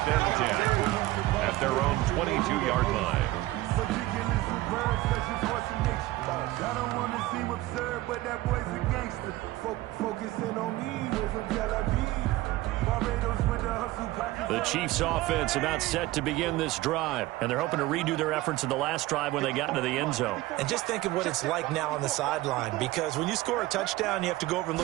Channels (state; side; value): quieter; left; 17.8 dB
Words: and 10 at their own 22-yard line. I don't want to seem absurd, but that boy's a gangster. Focusing on me with some Barbados with the hustle pocket. The Chiefs offense about set to begin this drive, and they're hoping to redo their efforts in the last drive when they got into the end zone. And just think of what it's like now on the sideline, because when you score a touchdown, you have to go over and